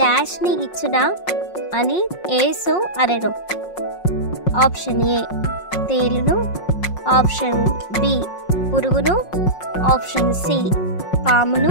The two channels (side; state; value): right; late; 5.5 ms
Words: డాష్ని ఇచ్చునా అని యేసు అనెను. ఆప్షన్ ఏ తేలును, ఆప్షన్ బి పురుగును, ఆప్షన్ సి